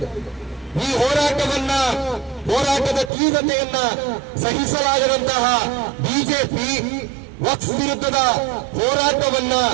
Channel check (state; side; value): drops out; left; at 3.1 s